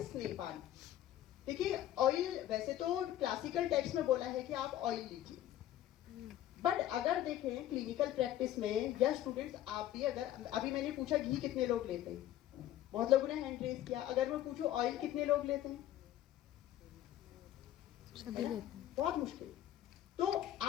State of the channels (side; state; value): right; quieter; 12.7 dB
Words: स्नेहपान। देखिए ऑयल, वैसे तो क्लासिकल टेक्स्ट में बोला है कि आप ऑयल लीजिए, बट अगर देखें क्लिनिकल प्रैक्टिस में या स्टूडेंट्स आप भी, अगर अभी मैंने पूछा घी कितने लोग लेते हैं, बहुत लोगों ने हैंड रेज किया। अगर मैं पूछूं ऑयल कितने लोग लेते हैं, बहुत मुश्किल। तो